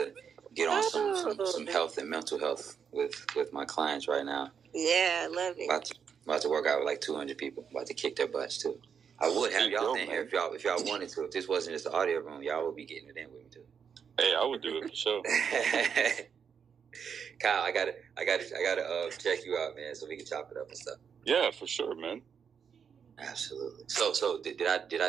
get on some health and mental health with my clients right now. Yeah, I love it. About to work out with like 200 people. About to kick their butts too. I would have y'all in here if y'all wanted to. If this wasn't just the audio room, y'all would be getting it in with me too. Hey, I would do it for sure. Kyle, I gotta check you out, man, so we can chop it up and stuff. Yeah, for sure, man. Absolutely. So did I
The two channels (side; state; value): left; quieter; 7.0 dB